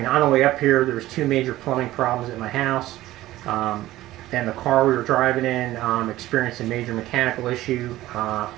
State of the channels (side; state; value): left; quieter; 15.8 dB